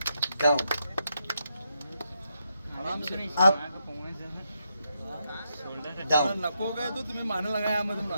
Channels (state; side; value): inverted; both; correlation -0.82